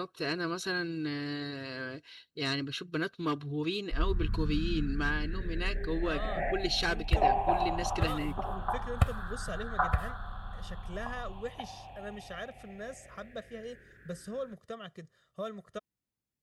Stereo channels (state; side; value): identical; both; correlation 1.00